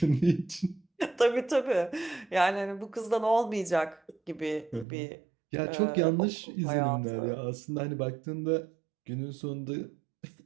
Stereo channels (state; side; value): drops out; left; at 4.9 s